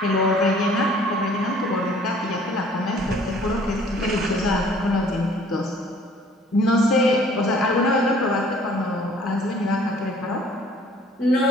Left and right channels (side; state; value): both; normal; correlation 0.55